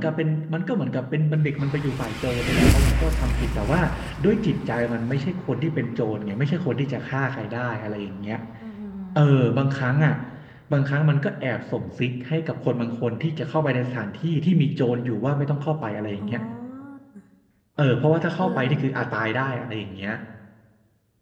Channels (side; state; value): both; identical; correlation 1.00